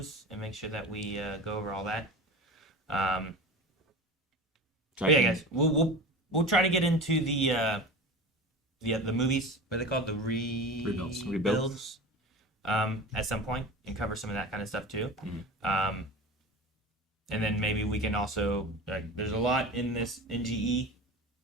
and make sure that we go over all that. But yeah, guys, we'll try to get into the movies. What are they called? The rebuilds. At some point and cover some of that kind of stuff too. And then maybe we can also there's a lot in this NGE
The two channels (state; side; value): normal; both; correlation 0.32